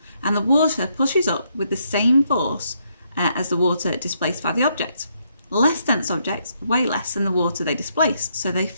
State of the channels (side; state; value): both; inverted; correlation -0.75